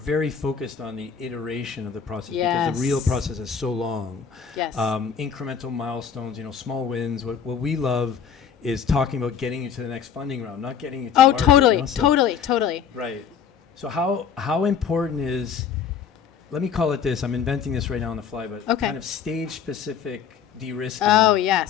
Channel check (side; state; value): right; quieter; 7.4 dB